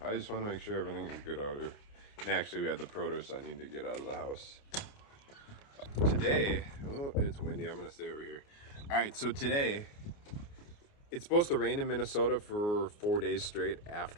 I just want to make sure everything is good out here. And actually, we had the produce I need to get out of the house. Today, oh, it's windy. I'm going to stay over here. All right, so today, it's supposed to rain in Minnesota for 4 days straight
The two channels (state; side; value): late; right; 29 ms